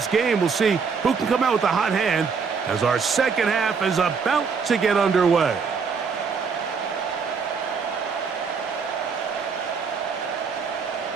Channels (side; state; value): left; quieter; 5.6 dB